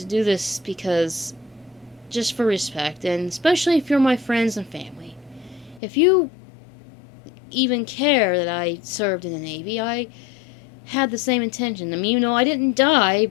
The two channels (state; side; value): drops out; right; at 5.8 s